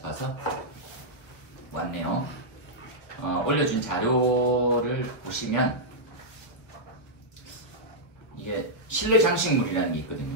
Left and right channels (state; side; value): late; right; 1.3 ms